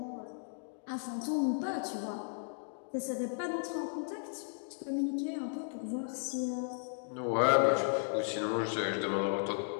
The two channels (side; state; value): right; silent; digital silence